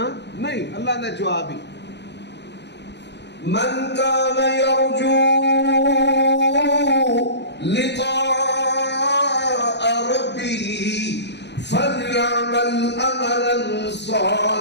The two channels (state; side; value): late; right; 0.50 ms